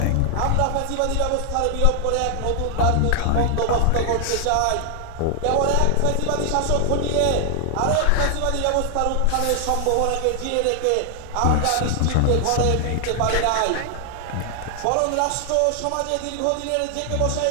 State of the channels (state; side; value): different; both; correlation 0.00